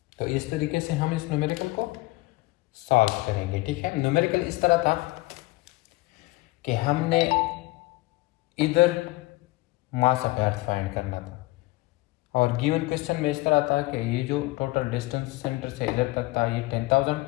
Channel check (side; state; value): right; quieter; 21.1 dB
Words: तो इस तरीके से हम इस न्यूमेरिकल को सॉल्व करेंगे, ठीक है। न्यूमेरिकल इस तरह था कि हमने इधर मास ऑफ अर्थ फाइंड करना था और गिवन क्वेश्चन में इस तरह था कि ये जो टोटल डिस्टेंस सेंटर से इधर तक था ये 10,000